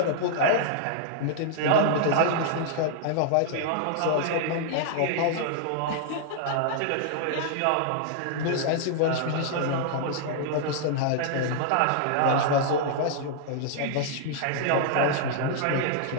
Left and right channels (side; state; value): both; different; correlation -0.01